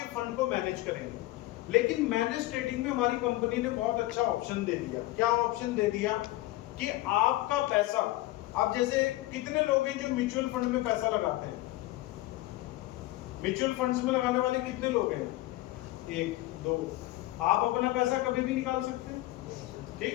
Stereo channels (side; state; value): right; quieter; 17.9 dB